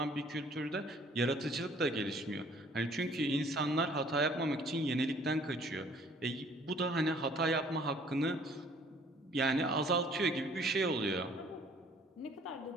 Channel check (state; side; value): normal; both; correlation 0.57